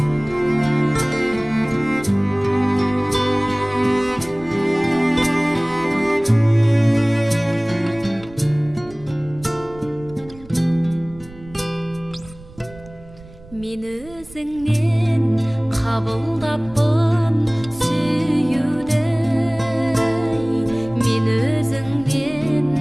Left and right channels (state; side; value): noise; right; rumble, 21 dB below the sound